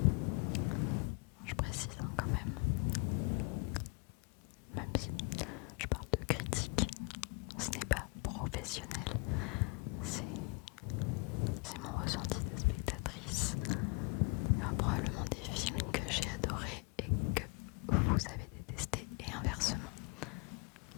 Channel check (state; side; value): quieter; right; 31.4 dB